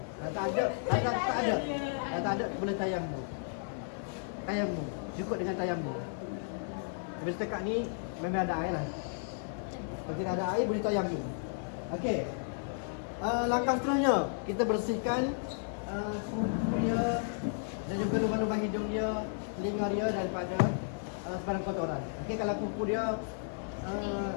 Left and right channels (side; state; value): right; silent; digital silence